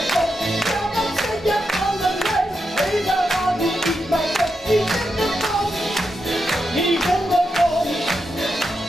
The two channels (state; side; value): normal; both; correlation 0.86